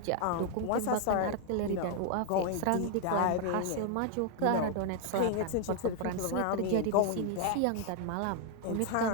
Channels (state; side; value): different; both; correlation 0.00